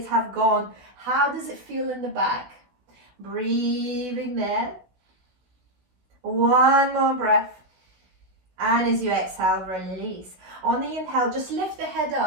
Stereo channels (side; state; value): left; late; 16 ms